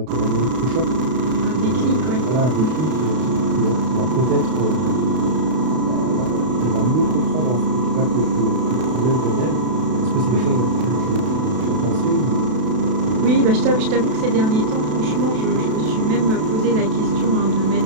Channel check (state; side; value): late; left; 32 ms